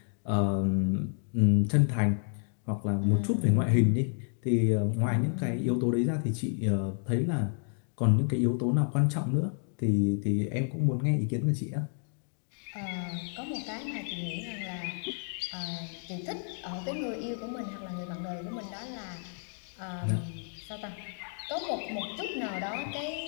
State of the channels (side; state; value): right; silent; 57 dB below the other